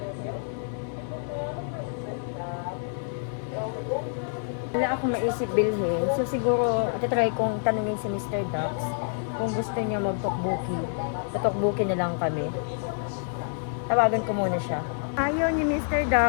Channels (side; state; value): right; silent; 60 dB below the other